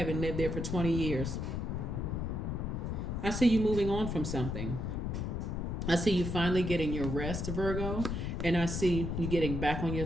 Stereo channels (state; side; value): noise; left; rumble, 2 dB below the sound